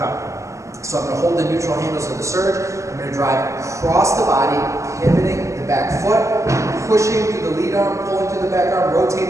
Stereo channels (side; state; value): left; late; 0.15 ms